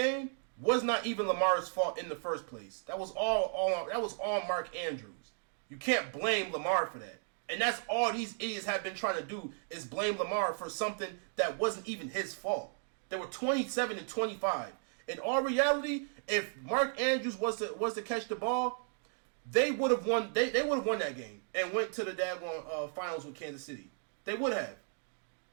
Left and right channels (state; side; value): silent; left; 55 dB below the other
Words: was not even Lamar's fault in the first place. That was all Mark Andrews. You can't blame Lamar for that. And that's all these idiots have been trying to do is blame Lamar for something that wasn't even his fault. They were 27-25. In all reality, if Mark Andrews was to catch the ball, they would have won. They would have won that game and went to the daggone finals with Kansas City. They would have.